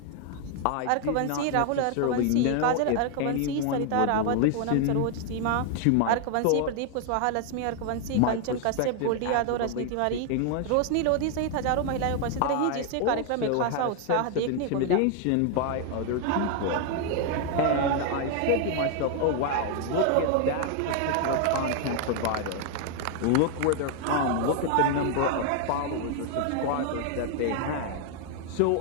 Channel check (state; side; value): different; both; correlation 0.00